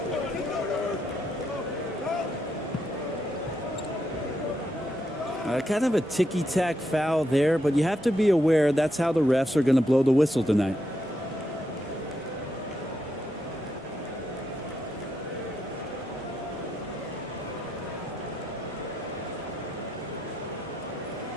Kind of a ticky-tack foul there, but you have to be aware that's how the refs are going to blow the whistle tonight.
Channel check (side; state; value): both; normal; correlation 0.81